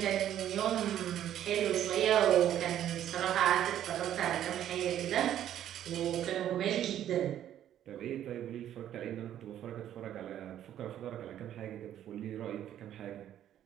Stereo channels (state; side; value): quieter; left; 11.1 dB